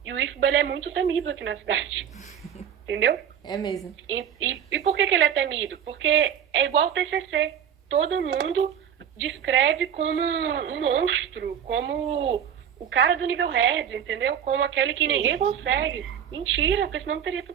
E o IFBA, ele é muito temido aqui na cidade. Entendeu? É mesmo. E por que ele é temido? Porque é igual o TCC. Todo mundo descreve como um monstro, como o cara do nível red, entendeu? Como aquele que ninguém consegue. Mentira, porque senão teria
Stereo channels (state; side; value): quieter; left; 8.8 dB